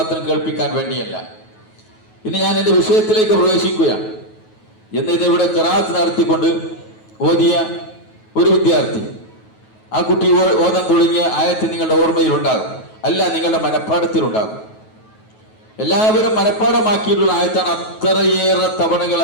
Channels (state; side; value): late; right; 9.3 ms